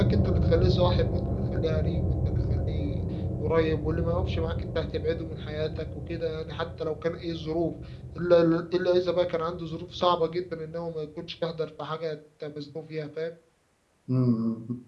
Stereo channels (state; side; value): identical; both; correlation 1.00